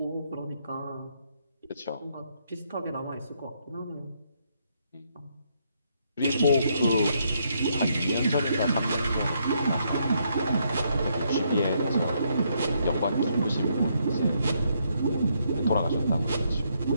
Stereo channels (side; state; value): both; inverted; correlation -0.74